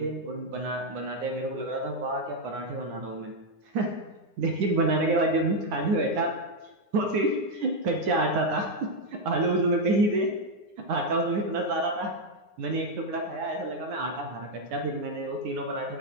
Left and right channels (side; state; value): left; late; 9.7 ms